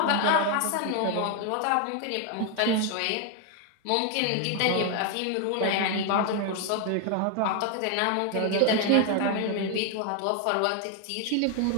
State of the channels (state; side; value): different; both; correlation 0.01